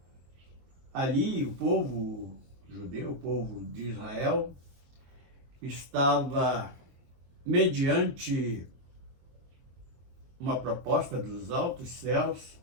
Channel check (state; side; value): late; left; 23 ms